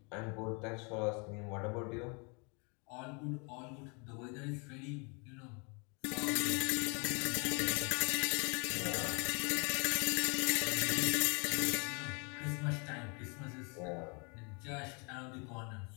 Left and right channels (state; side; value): quieter; right; 33.3 dB